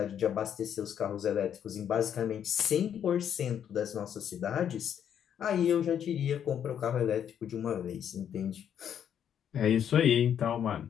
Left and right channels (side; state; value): right; quieter; 9.0 dB